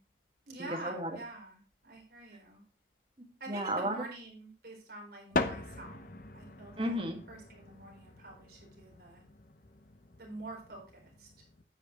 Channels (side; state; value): both; normal; correlation 0.16